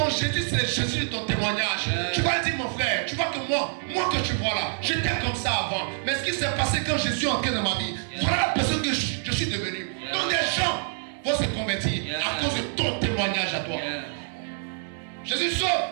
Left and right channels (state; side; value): silent; left; 61 dB below the other